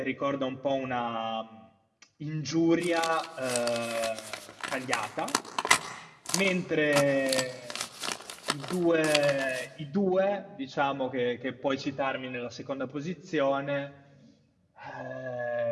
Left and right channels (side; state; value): both; identical; correlation 1.00